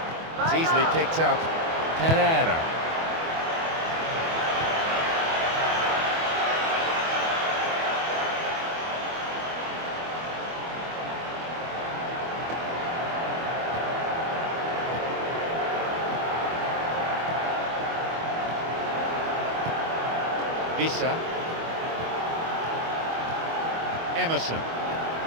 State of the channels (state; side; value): late; left; 24 ms